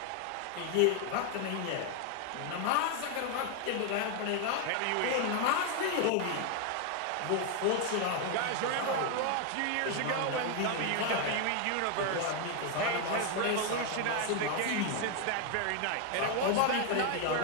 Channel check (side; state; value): both; different; correlation 0.01